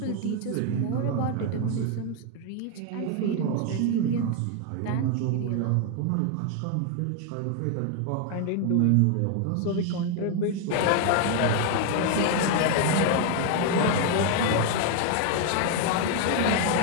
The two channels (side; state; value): both; different; correlation 0.00